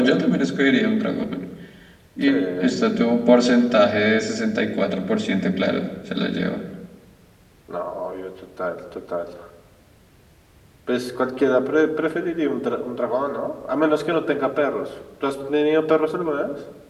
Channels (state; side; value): identical; both; correlation 1.00